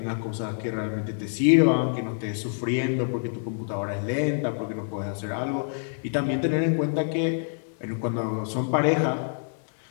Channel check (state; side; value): silent; right; digital silence